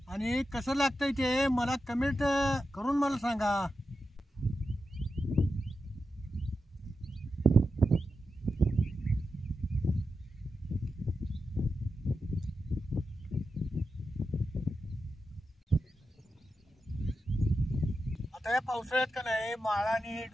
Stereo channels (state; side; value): normal; both; correlation 0.90